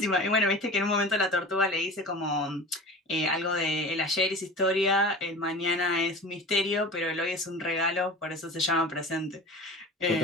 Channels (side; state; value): both; normal; correlation 0.35